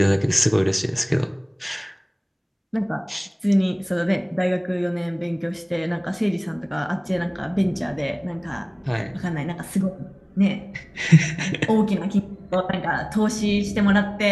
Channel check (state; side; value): identical; both; correlation 1.00